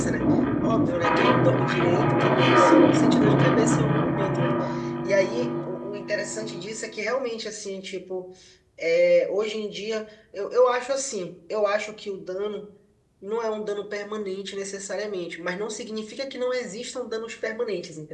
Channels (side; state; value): both; identical; correlation 1.00